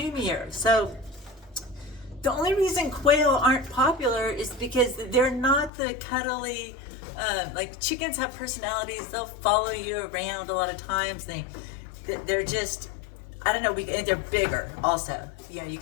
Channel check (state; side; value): drops out; right; at 5.7 s